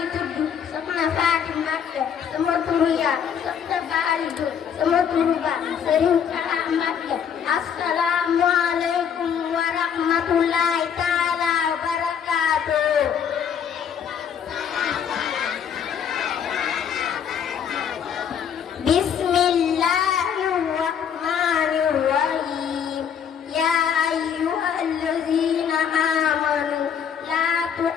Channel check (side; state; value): right; quieter; 7.9 dB